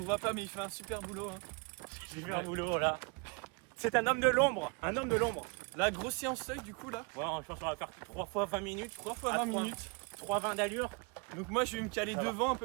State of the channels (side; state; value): left; quieter; 32.5 dB